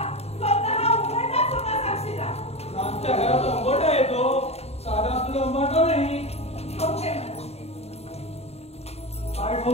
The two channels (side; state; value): right; late; 0.30 ms